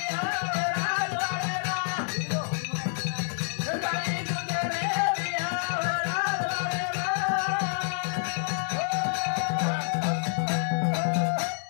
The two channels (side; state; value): right; silent; digital silence